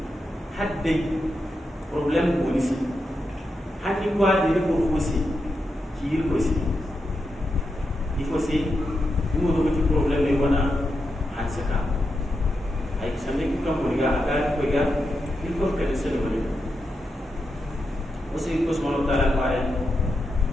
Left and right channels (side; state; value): both; normal; correlation 0.86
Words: haddai problem ko ni si haddi ko ade ko wasi ki ko si il faut aussi nous avons des problèmes et voilà hansaka ay samé ki kam ko ga aga ko ga il faut que se le bonne aussi ko subhanahu wa ta'ala pare